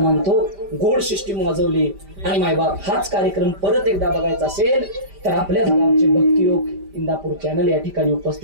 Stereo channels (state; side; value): late; left; 5.1 ms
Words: गोड सिस्टीम वाजवली. आणि मायबाप हाच कार्यक्रम परत एकदा बघायचा असेल तर आपल्याच गावचे भक्तियोग इंदापूर चॅनल या ठिकाणी